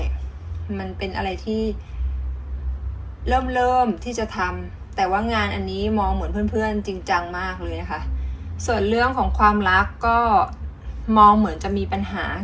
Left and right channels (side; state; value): both; identical; correlation 1.00